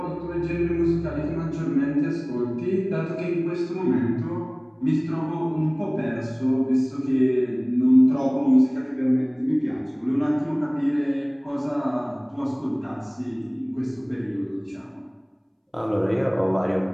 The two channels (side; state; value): both; identical; correlation 1.00